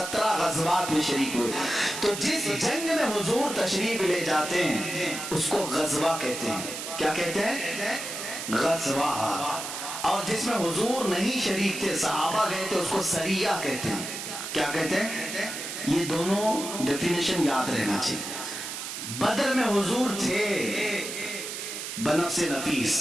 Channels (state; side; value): noise; right; hiss, 7 dB below the sound